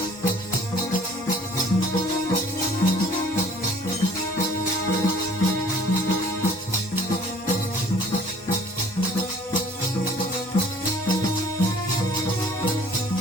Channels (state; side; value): normal; both; correlation 0.53